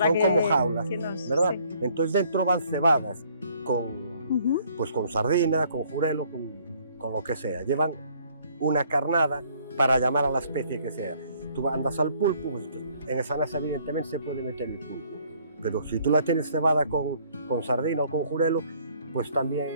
son como jaulas, ¿verdad? Sí. Entonces dentro van cebadas pues con sardina, con jurelo, con lo que sea. Llevan una carnada para llamar a la especie que sea. Tú andas al pulpo, pues en esa nasa evidentemente se puede meter el pulpo. Pero si tú la tienes cebada con sardina o con jurelo, pues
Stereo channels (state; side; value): inverted; both; correlation -0.62